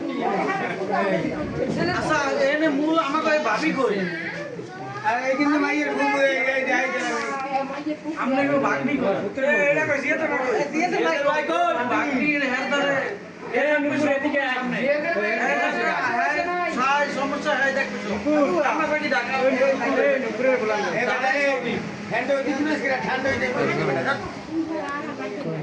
আচ্ছা এনে মূল আমাকে ভাবি কই अरे कितने माइयर घूम गए जाए আমরা কেউ ভাগনি কই এটা কই দিয়ে তো ভাই কই ভাগনি হেরদারে এটা মুখে এদিকে সামনে সাই সমস্যা হয় দেখছো আমরা কই ঢাকা নুপুরে বলা হ্যান্ড ওই দিন না সেটা ঠান্ডা হয়ে যাবে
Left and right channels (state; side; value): identical; both; correlation 1.00